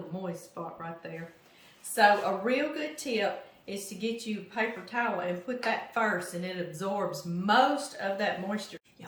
moist spot right there. So a real good tip is to get you a paper towel and put that first, and it absorbs most of that moisture.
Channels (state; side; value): identical; both; correlation 1.00